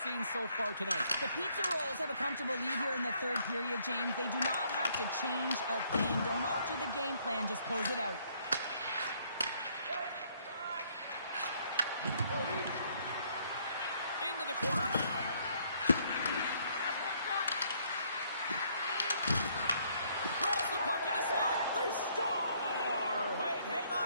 so far tonight. The Pizza Rolls have a comfortable lead here in the third period, James. They do not have to change a thing. Don't alter the game plan. Just close it out. Into the corner now. Grabs the puck in the slot. They score! Wait, hang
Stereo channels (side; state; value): both; inverted; correlation -0.67